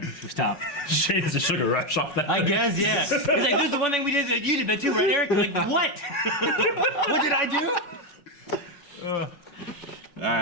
We stopped. Shit is a sugar rush off that. I guess, yeah. It's like, this is the one thing we did that you did that too, right, Eric? You're like, what? What did I do? All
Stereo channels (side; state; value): right; late; 5.4 ms